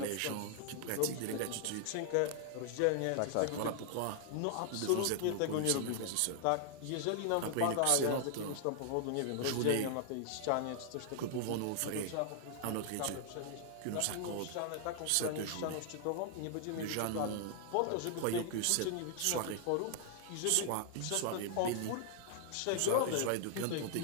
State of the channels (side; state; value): both; different; correlation 0.00